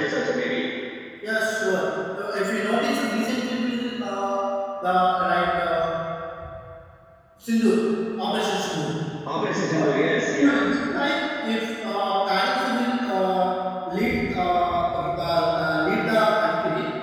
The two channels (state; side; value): identical; both; correlation 1.00